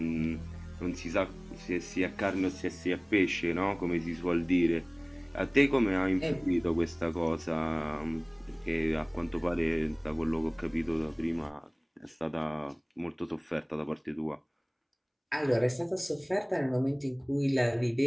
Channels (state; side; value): identical; both; correlation 1.00